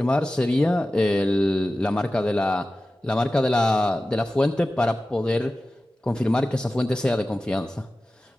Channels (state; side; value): normal; both; correlation 0.95